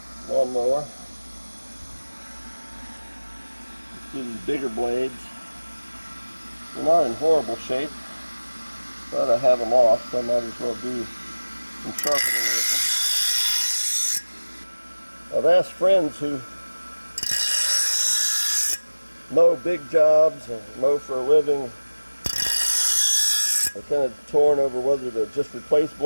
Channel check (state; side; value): inverted; both; correlation -1.00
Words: lawnmower. Let's do these bigger blades. They're not in horrible shape, but I have them off, so I might as well do some sharpening with them. I've asked friends who mow big jobs and mow for a living. They're kind of torn over whether to just replace